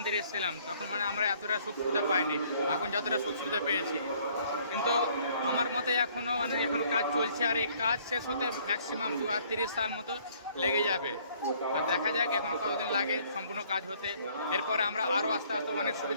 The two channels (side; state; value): both; inverted; correlation -0.61